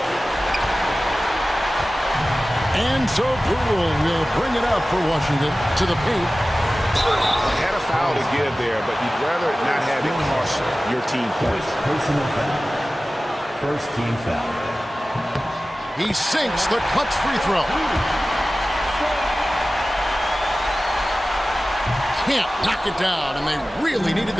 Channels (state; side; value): normal; both; correlation 0.96